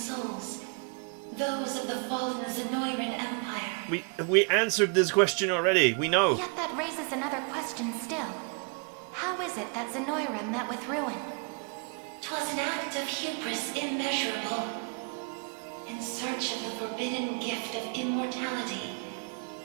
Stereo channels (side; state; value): left; quieter; 37.4 dB